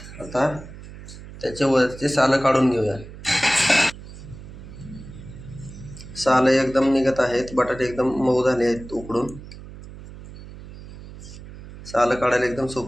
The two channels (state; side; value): noise; right; hum, 15 dB below the sound